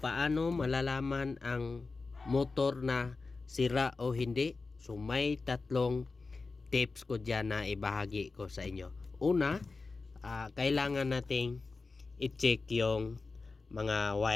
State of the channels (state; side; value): quieter; right; 4.0 dB